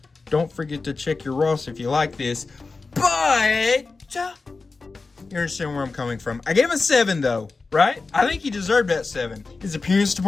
Don't forget to check your Ross if you like this, but you understand where I'm coming from. I gave him a 7 though, right? I think he deserved that 7. His appearance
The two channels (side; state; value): right; quieter; 4.0 dB